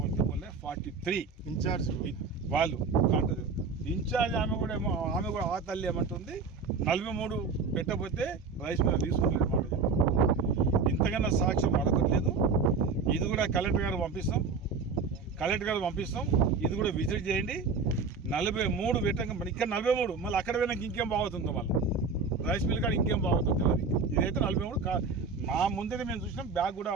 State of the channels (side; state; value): left; quieter; 4.7 dB